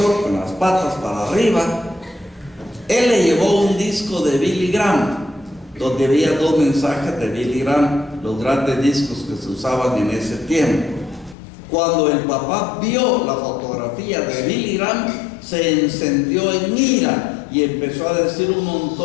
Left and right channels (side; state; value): right; drops out; at 11.4 s